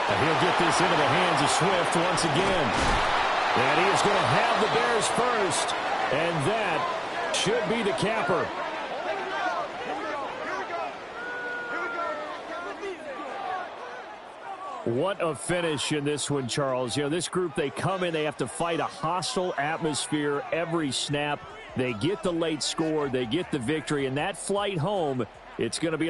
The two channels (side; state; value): both; identical; correlation 1.00